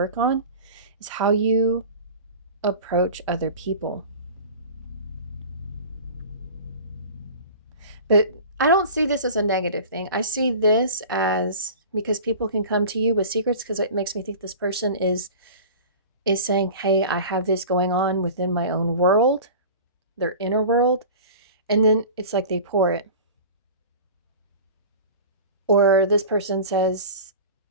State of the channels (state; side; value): inverted; both; correlation -0.37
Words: on is how you approach other people. But I don't see this as a negative thing. I see this as, because people can come to you with secrets, because it makes me think this person is saying, hey, I have this going on within my own world, their inner world. And then it's like they pour it. Or this person says,